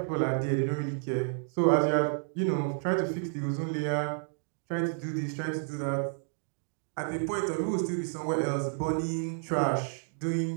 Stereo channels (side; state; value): left; silent; 57 dB below the other